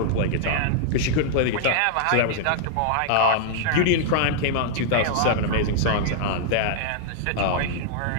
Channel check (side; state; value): both; different; correlation -0.01